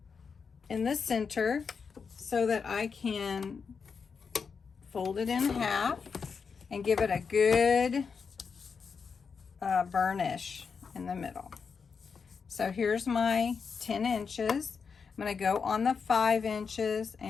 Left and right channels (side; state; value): right; quieter; 5.7 dB